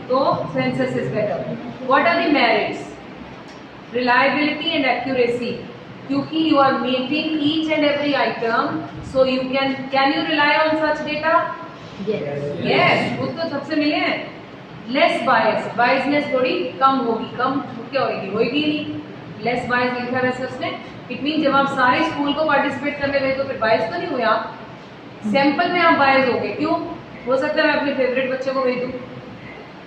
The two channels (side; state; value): both; identical; correlation 1.00